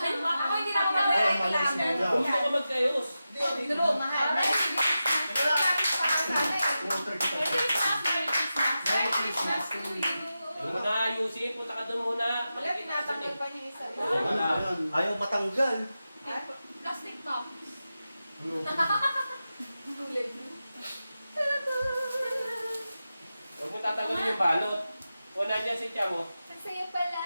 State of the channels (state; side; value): inverted; both; correlation -0.92